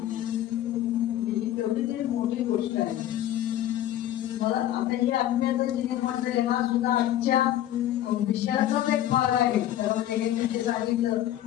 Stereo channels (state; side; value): quieter; right; 12.4 dB